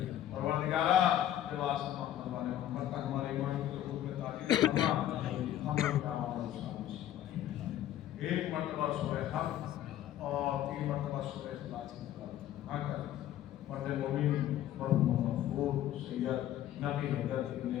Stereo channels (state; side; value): quieter; right; 12.1 dB